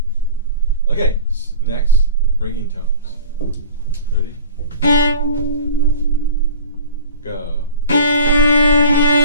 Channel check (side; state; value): both; inverted; correlation -0.39